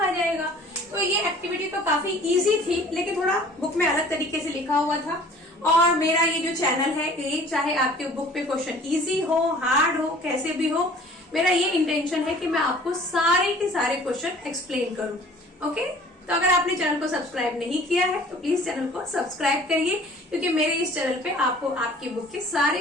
जाएगा। तो ये एक्टिविटी तो काफी इजी थी, लेकिन थोड़ा बुक में अलग तरीके से लिखा हुआ था। और मेरा ये जो चैनल है, ये चाहे आपके बुक पे क्वेश्चन इजी हो, हार्ड हो, कैसे भी हो, मेरा ये इंटेंशन है कि मैं आपको सारे के सारे क्वेश्चन एक्सप्लेन करूं। ओके, तो अगर आपने चैनल को सब्सक्राइब नहीं किया है तो प्लीज चैनल को सब्सक्राइब करिए, क्योंकि मेरे इस चैनल पे आपको आपकी बुक के सारे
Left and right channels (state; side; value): normal; both; correlation 0.50